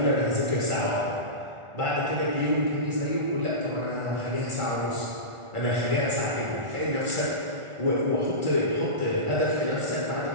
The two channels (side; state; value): left; late; 1.4 ms